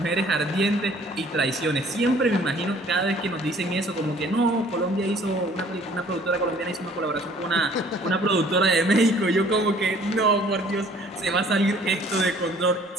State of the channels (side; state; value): both; normal; correlation 0.56